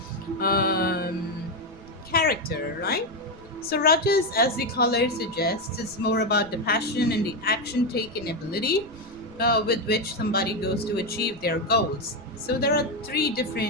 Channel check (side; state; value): right; noise; rumble, 22 dB below the sound